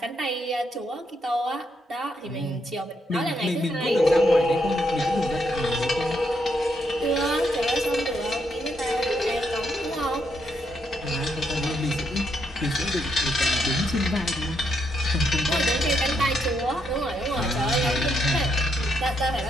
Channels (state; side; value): normal; both; correlation 0.77